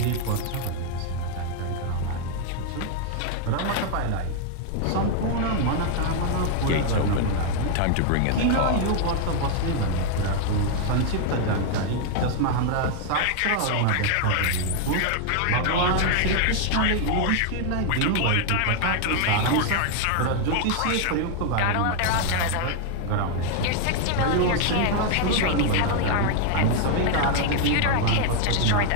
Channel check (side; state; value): both; different; correlation 0.00